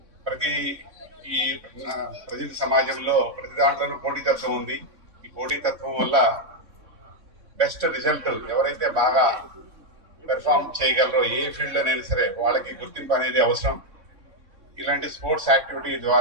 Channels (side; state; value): left; late; 3.6 ms